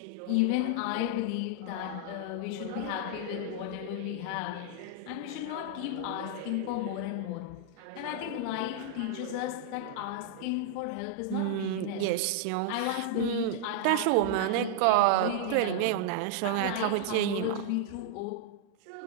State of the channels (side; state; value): both; different; correlation 0.00